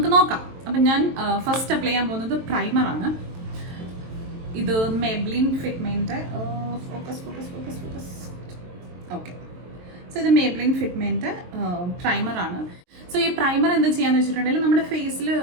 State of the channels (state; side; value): late; left; 23 ms